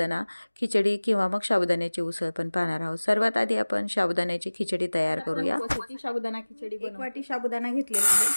खिचडी किंवा मग साबुदाण्याची उसळ पण पाहणार आहोत। सर्वात आधी आपण साबुदाण्याची खिचडी तयार करूया। साबुदाणा खिचडी 1 वाटी साबुदाणा घेतलेला आहे।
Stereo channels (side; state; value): both; inverted; correlation -1.00